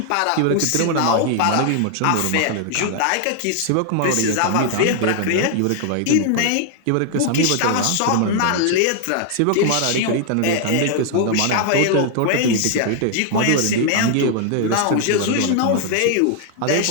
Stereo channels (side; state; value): both; different; correlation 0.00